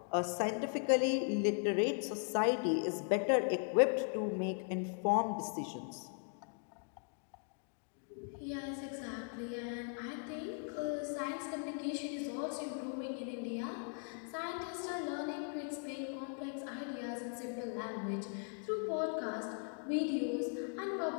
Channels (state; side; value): silent; right; 52 dB below the other